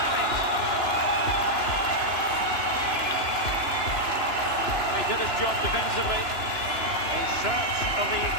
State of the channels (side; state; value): right; late; 2.9 ms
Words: it. He did his job defensively, in search of the